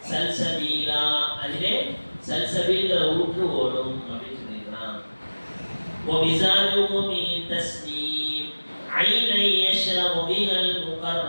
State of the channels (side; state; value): both; inverted; correlation -1.00